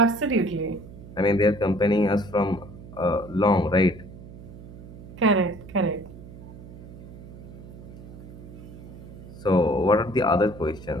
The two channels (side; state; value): right; noise; hum, 16 dB below the sound